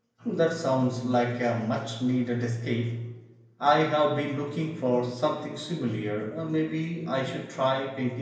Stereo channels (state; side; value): identical; both; correlation 1.00